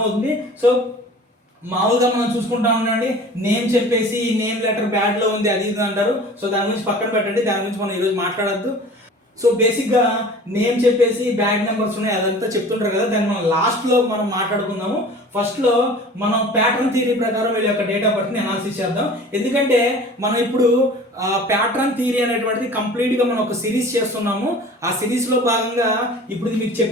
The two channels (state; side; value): normal; both; correlation 0.43